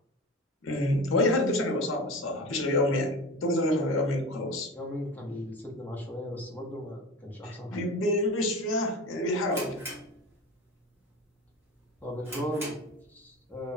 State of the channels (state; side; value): normal; both; correlation 0.30